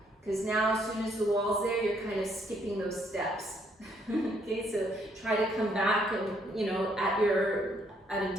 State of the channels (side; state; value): both; normal; correlation 0.70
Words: Because now as soon as the wall's there, you're kind of skipping those steps. Okay, so try to come back and, at a